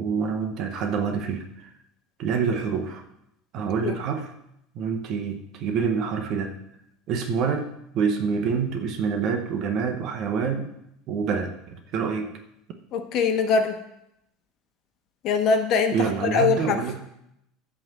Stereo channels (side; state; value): both; normal; correlation 0.33